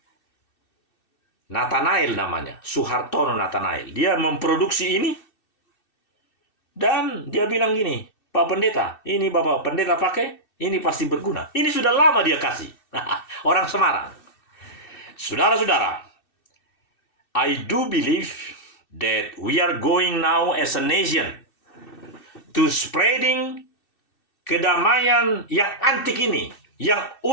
Nathanael namanya, Suhartono Nathanael. Dia memproduksi ini. Dan dia bilang gini, Pak Pendeta, ini Bapak Pendeta pakai, ini pasti berguna. Ini sudah lama dia kasih. Orang Semarang. Saudara-saudara, I do believe that we are going now as a nation to spreading kedamaian yang antik ini, yang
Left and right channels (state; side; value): late; right; 2.6 ms